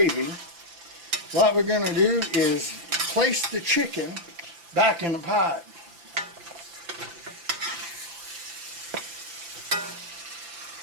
what we're going to do is place the chicken back in the pot.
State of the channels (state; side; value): late; left; 5.8 ms